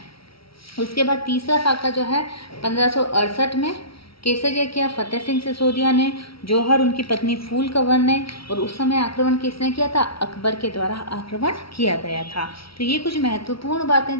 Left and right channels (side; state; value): right; late; 0.75 ms